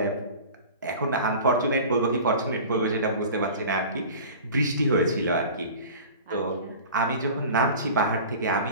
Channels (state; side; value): inverted; both; correlation -0.38